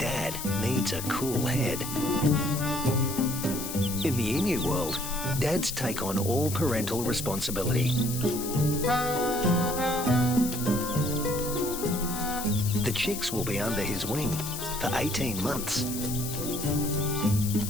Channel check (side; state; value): left; noise; hiss, 7 dB below the sound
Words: needs a cool head. In the emu world, dads take on all parental responsibility. The chicks will be under his wing for 18 months.